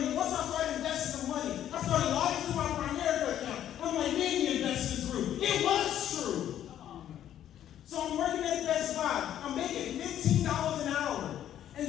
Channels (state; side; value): quieter; right; 11.0 dB